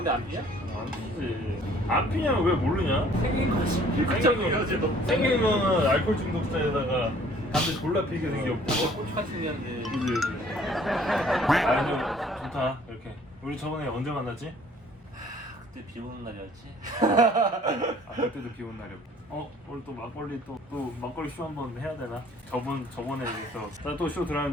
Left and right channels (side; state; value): both; normal; correlation 0.56